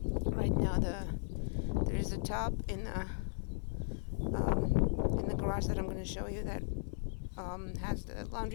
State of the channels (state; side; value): silent; right; 53 dB below the other